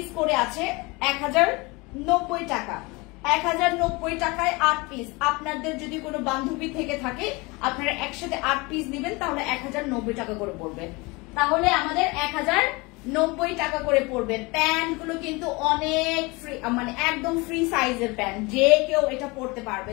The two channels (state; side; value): quieter; right; 25.4 dB